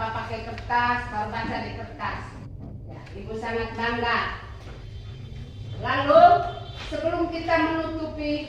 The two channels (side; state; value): both; identical; correlation 1.00